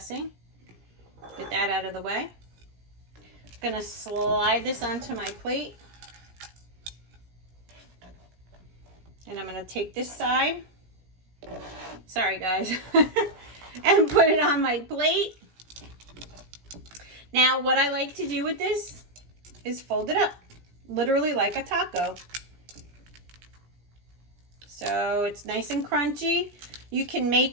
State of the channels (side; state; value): left; late; 17 ms